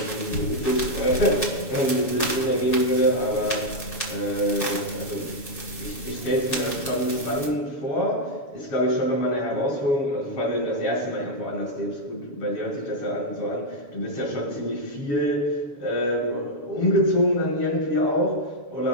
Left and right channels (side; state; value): right; late; 7.1 ms